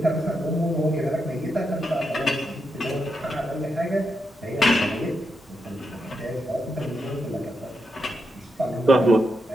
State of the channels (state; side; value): normal; both; correlation 0.84